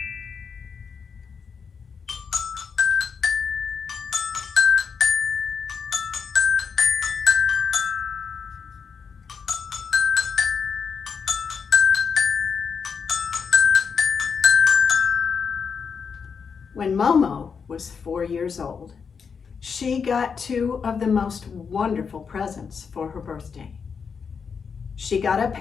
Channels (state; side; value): quieter; right; 6.0 dB